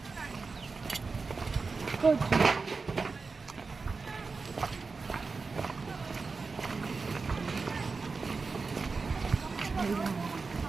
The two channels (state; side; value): quieter; left; 4.4 dB